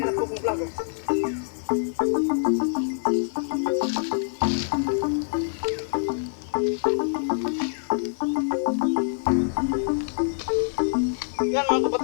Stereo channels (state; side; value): silent; right; 60 dB below the other